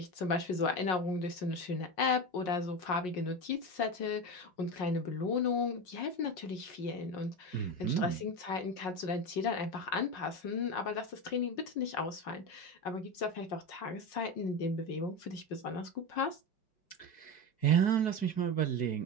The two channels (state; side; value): late; right; 5.5 ms